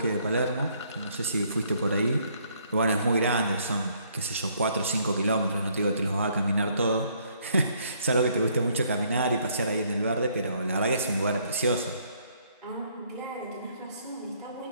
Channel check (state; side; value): inverted; both; correlation -0.67